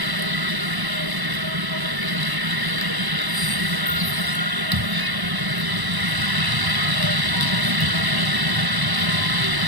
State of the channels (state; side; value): late; left; 1.0 ms